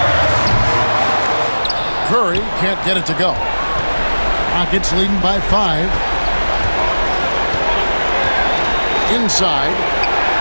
Curry can't get it to go. Rockets leading by 5. Inside.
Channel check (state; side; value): inverted; both; correlation -1.00